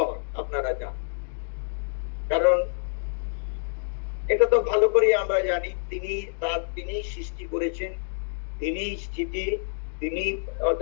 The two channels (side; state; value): right; silent; digital silence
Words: আপনারা জানেন, কারণ এটা তো ভালো করে আমরা জানি তিনি সৃষ্টি করেছেন, তিনি স্থিতি তিনি